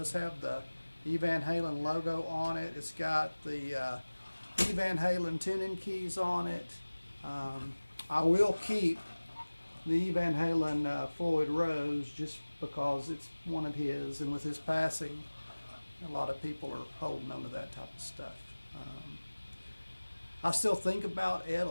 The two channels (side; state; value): both; inverted; correlation -1.00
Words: have the E Van Halen logo on it. It's got the E Van Halen tuning keys on it. I will keep the E Van Halen Floyd Rose just because it's one of his, and with his passing, a lot of people are holding on to that type of stuff. I still think about Ed